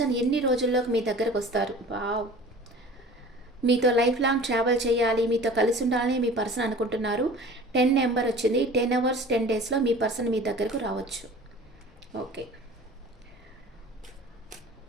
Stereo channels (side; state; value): both; normal; correlation 0.43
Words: ఎన్ని రోజుల్లోకి మీ దగ్గరకు వస్తారు? వావ్, మీతో లైఫ్ లాంగ్ ట్రావెల్ చేయాలి, మీతో కలిసి ఉండాలని మీ పర్సన్ అనుకుంటున్నారు. 10 నెంబర్ వచ్చింది. 10 అవర్స్ 10 డేస్లో మీ పర్సన్ మీ దగ్గరకు రావచ్చు. ఓకే,